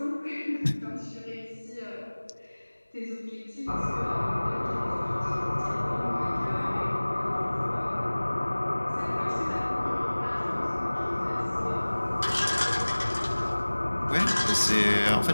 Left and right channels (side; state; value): both; inverted; correlation -1.00